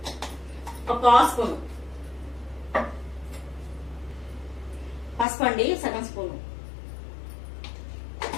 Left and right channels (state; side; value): drops out; right; at 5.2 s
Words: 1 స్పూన్, పసుపు అండి సగం స్పూను.